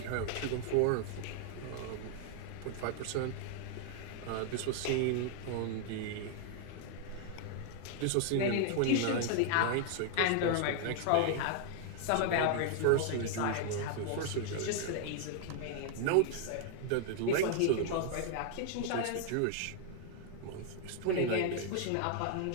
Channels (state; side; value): different; both; correlation 0.00